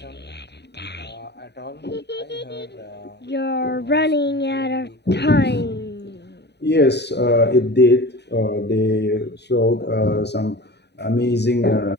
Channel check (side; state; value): right; late; 0.49 ms